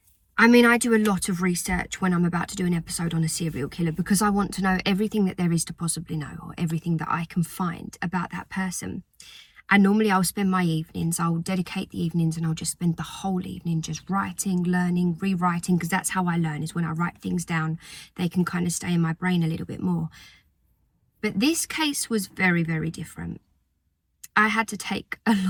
I mean, I do a lot of research when I'm about to do an episode on a serial killer because I want to know everything that there is to possibly know, or everything that I can find about that person. And normally I'll spend my evenings, I'll dedicate the evenings and I'll just spend the whole evening just writing, learning, rewriting, because that's how I learn, is when I write things down, they can kind of stay in my brain a little bit more. But this case was very, very different. I had to take a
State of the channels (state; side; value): identical; both; correlation 1.00